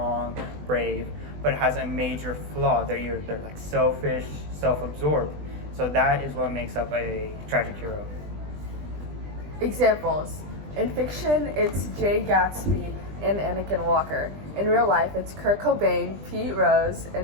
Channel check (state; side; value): late; left; 20 ms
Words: brave, but has a major flaw. They're like selfish, self-absorbed. So that is what makes up a tragic hero. Examples. In fiction, it's Jay Gatsby and Anakin Walker. In real life, it's Kurt Cobain, Pete Rose,